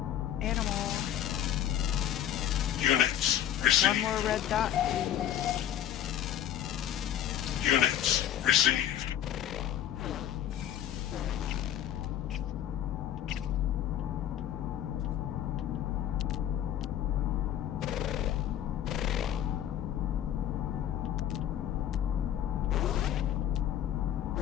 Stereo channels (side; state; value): right; quieter; 10.9 dB